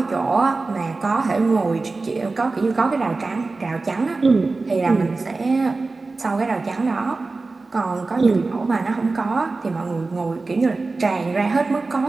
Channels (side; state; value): left; quieter; 3.7 dB